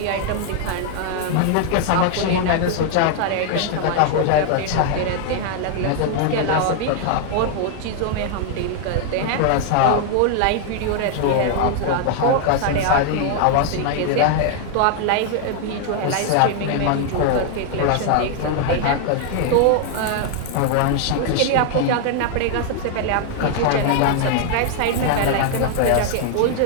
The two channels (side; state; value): both; different; correlation 0.00